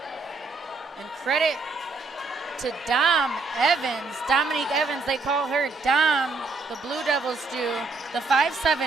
And credit to Dominique Evans, they call her Dom, the Blue Devils do, the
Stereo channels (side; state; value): left; quieter; 3.8 dB